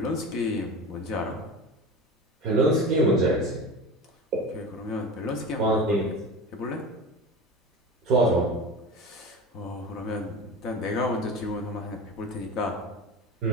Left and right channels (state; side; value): normal; both; correlation 0.30